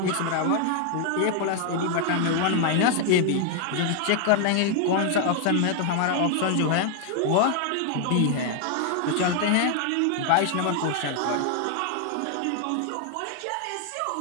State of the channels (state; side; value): different; both; correlation 0.00